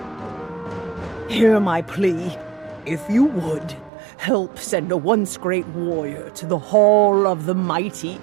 Hear my plea. If you would, help send a once-great warrior to the Hall of the Mighty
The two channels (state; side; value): drops out; left; at 3.9 s